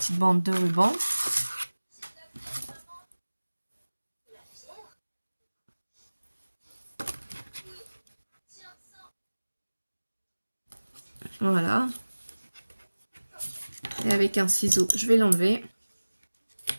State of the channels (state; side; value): inverted; both; correlation -1.00